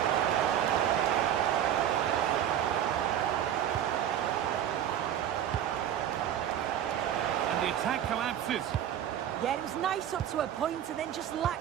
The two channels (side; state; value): left; quieter; 10.4 dB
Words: And the attack collapses. Yeah, it was nice up to a point and then just